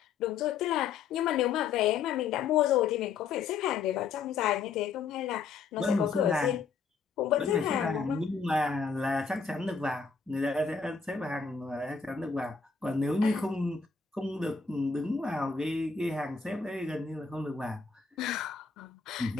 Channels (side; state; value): right; quieter; 5.5 dB